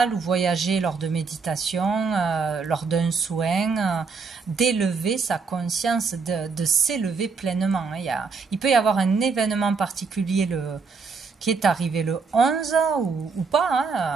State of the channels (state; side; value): quieter; left; 4.8 dB